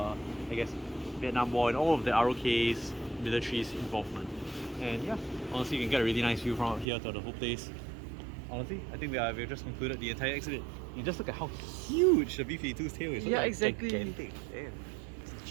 I guess, Vietnam War and all of the ROK's military's involvement. And yeah, honestly, you can get a really nice view from up here to the whole place. Honestly, I think we've just concluded the entire exhibit. You just look at how huge the B-52's tail is. Yeah, exactly. Gigantic. Damn. It's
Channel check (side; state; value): left; drops out; at 6.9 s